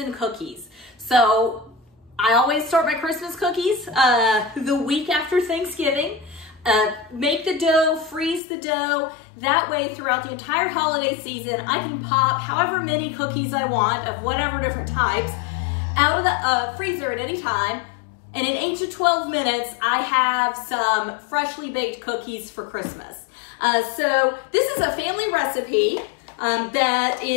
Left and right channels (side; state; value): right; drops out; at 8.4 s